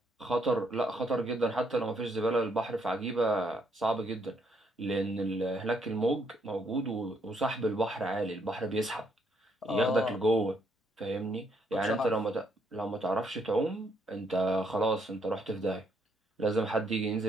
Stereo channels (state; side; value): normal; both; correlation 0.72